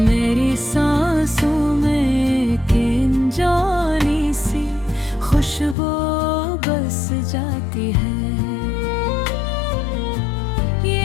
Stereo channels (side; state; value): right; drops out; at 5.8 s